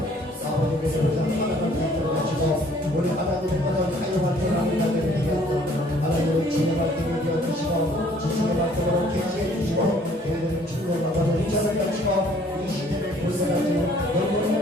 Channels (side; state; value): both; normal; correlation 0.58